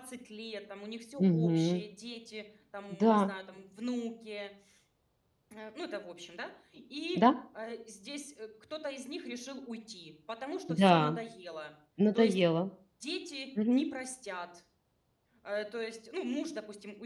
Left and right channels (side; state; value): both; identical; correlation 1.00